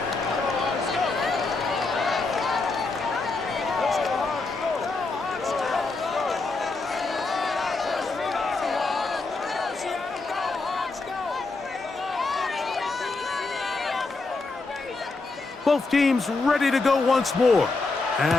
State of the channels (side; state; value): right; quieter; 3.7 dB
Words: Both teams ready to go once more